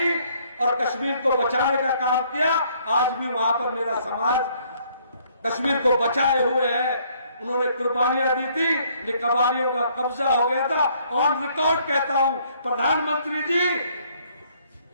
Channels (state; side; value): inverted; both; correlation -0.65